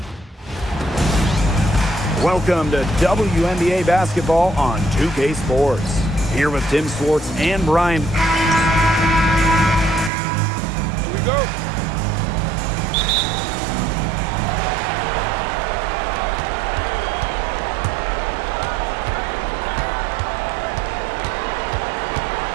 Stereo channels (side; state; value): left; drops out; at 10.1 s